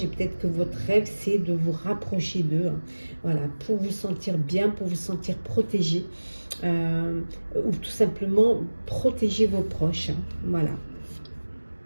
et peut-être que votre rêve, c'est de vous rapprocher d'eux. Hein. Voilà, pour vous sentir bien, pour vous sentir protégé. Ou tout simplement protéger vos proches. Hein. Voilà.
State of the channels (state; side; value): inverted; both; correlation -1.00